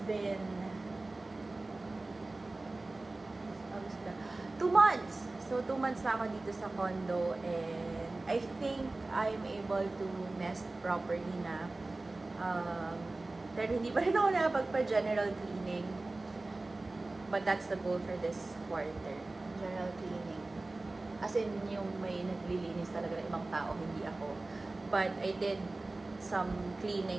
been 2 months. So, 2 months na ako dito sa condo and I think I'm able to nest properly na. Pero hindi pa rin ako nakapagpa-general cleaning. But that's the goal for this quarter. General cleaning. As in, yung may naglilinis talaga ng ibang tao, hindi ako. But I did some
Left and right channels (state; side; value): quieter; left; 3.1 dB